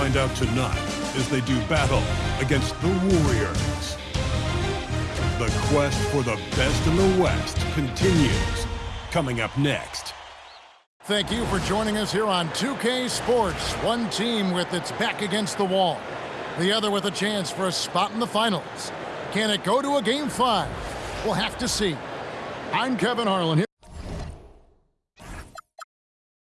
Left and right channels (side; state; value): both; identical; correlation 1.00